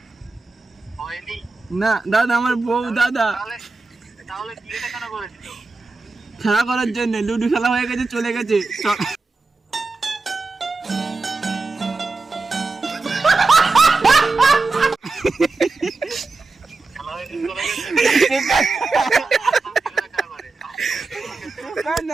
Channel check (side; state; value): left; quieter; 3.8 dB